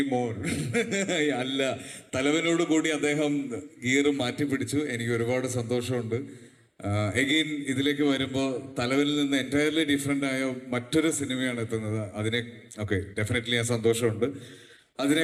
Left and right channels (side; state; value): both; identical; correlation 1.00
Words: മോർ അല്ല. തലവനോട് കൂടി അദ്ദേഹം ഗിയർ മാറ്റി പിടിച്ചു. എനിക്ക് ഒരുപാട് സന്തോഷമുണ്ട്. എഗെയിൻ ഇതിലേക്ക് വരുമ്പോൾ തലവനിൽ നിന്ന് എൻറ്റയർലി ഡിഫറെൻ്റ് ആയ മറ്റൊരു സിനിമയാണ് എത്തുന്നത്. ഡെഫിനറ്റ്ലി ആ സന്തോഷമുണ്ട്.